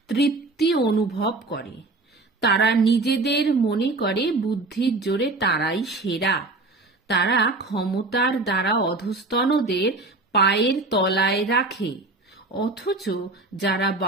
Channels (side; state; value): left; quieter; 3.2 dB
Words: তৃপ্তি অনুভব করে। তারা নিজেদের মনে করে বুদ্ধির জোরে তারাই সেরা। তারা ক্ষমতার দ্বারা অধস্তনদের পায়ের তলায় রাখে। অথচ যারা